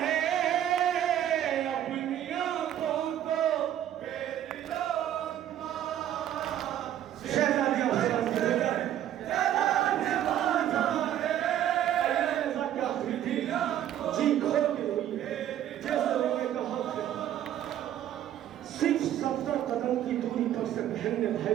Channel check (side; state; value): left; quieter; 11.3 dB